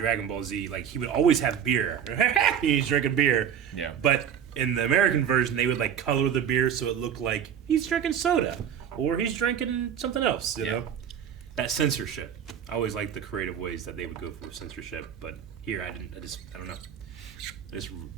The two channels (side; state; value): left; quieter; 8.7 dB